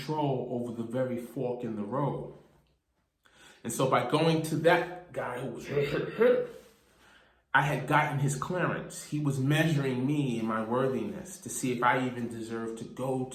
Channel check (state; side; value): identical; both; correlation 1.00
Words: over the very fork in the road. And so by going to that guy who was I had gotten his clearance. He was measuring me and my worthiness to see if I even deserved to go